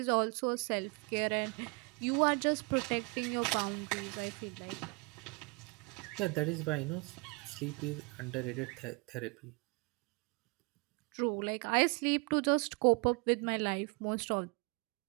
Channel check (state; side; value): quieter; left; 29.5 dB